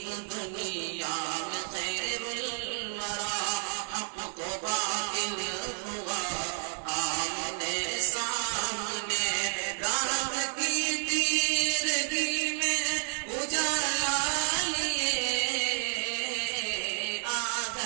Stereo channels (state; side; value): silent; left; digital silence